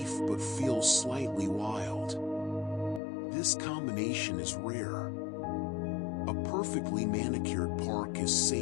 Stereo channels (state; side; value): drops out; right; at 3.0 s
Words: but feel slightly wild. This combination is rare. A perfectly manicured park is